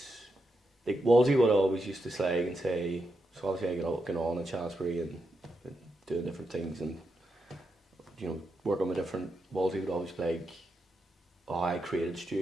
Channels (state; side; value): normal; both; correlation 0.85